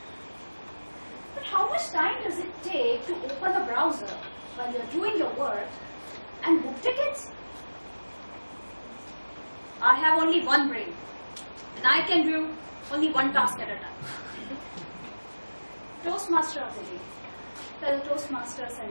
But how much time does it take to open a browser while you're doing your work and book tickets? I have only one brain, and I can do only one task at a time. Toastmaster of the day, fellow Toastmasters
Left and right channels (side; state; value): both; inverted; correlation -1.00